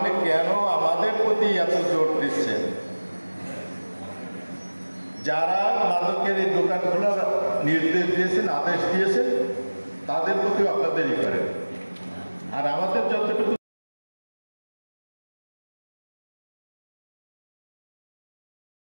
কেন আমাদের প্রতি এত জোর দিচ্ছেন? যারা মাদকের এই দোকান খোলার নির্দেশ দিয়েছেন, আদেশ দিয়েছেন, তাদের প্রতিও আপনাদেরই করেন। আর আমাদের যতটুকু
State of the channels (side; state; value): both; inverted; correlation -1.00